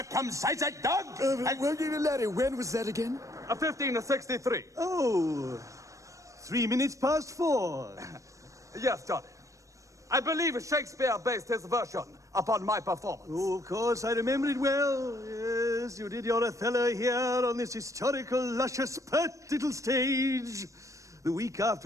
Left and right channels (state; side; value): late; left; 0.15 ms